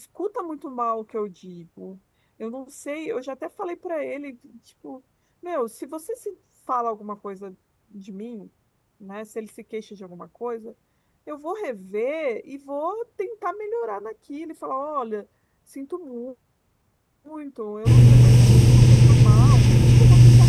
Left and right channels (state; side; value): identical; both; correlation 1.00